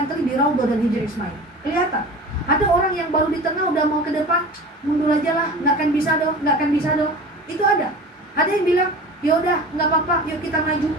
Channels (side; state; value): both; normal; correlation 0.36